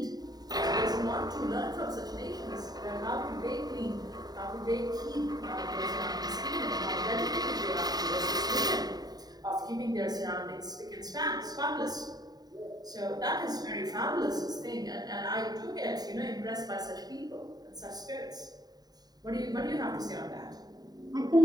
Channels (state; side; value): late; left; 0.19 ms